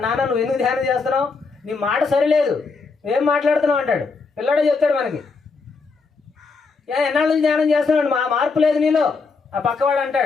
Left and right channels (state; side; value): quieter; right; 4.5 dB